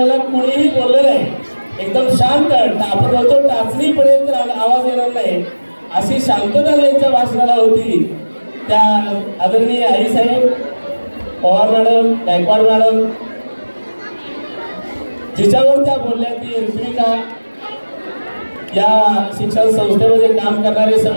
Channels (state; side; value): inverted; both; correlation -1.00